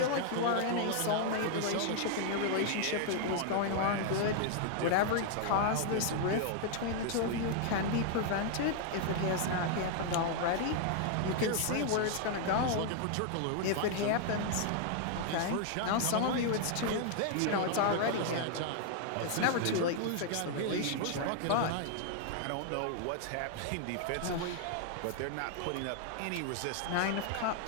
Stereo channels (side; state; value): both; different; correlation 0.00